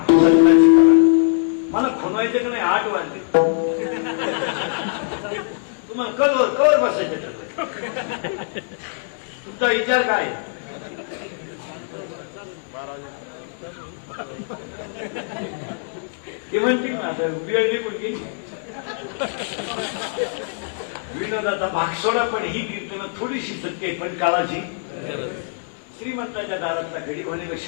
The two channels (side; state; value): right; silent; digital silence